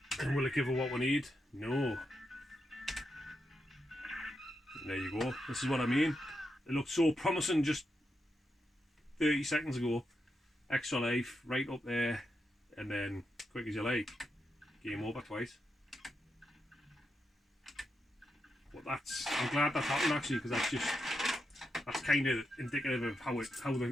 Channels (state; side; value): normal; both; correlation 0.85